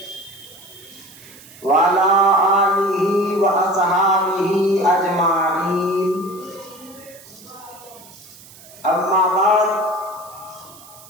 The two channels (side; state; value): right; noise; hiss, 21 dB below the sound